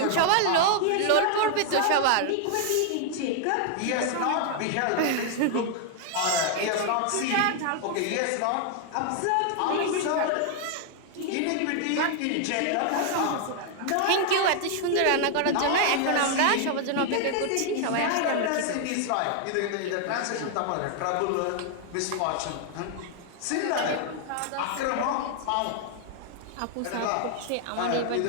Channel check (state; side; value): different; both; correlation 0.00